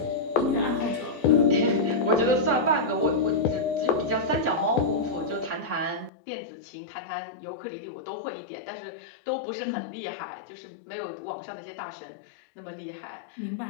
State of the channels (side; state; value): right; drops out; at 6.1 s